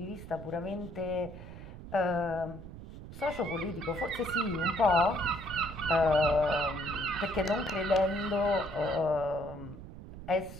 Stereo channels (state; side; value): noise; right; rumble, 13 dB below the sound